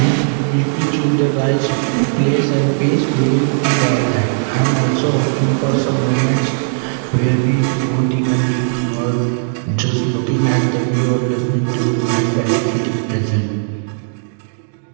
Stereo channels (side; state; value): left; silent; digital silence